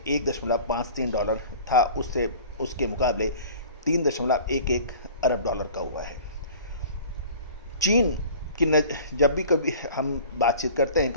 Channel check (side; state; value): both; inverted; correlation -0.43